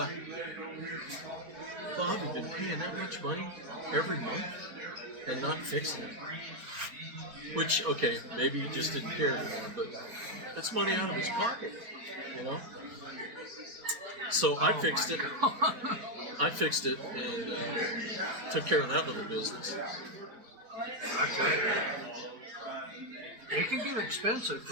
Bob had been paying that much money every month and not fixing it. Which, okay, maybe he just didn't care anymore, but that's money out of his pocket, So I fixed it. I fixed it and took care of that little business. Okay. It can get expensive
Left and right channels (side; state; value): left; late; 4.4 ms